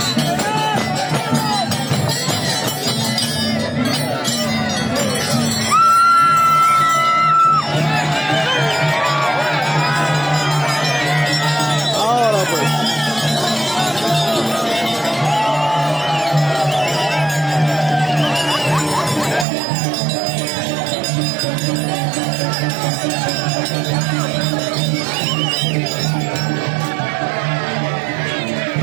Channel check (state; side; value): drops out; left; at 19.5 s